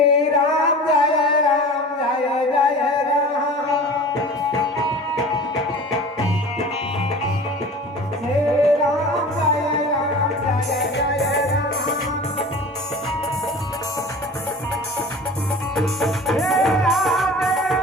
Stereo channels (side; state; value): both; normal; correlation 0.39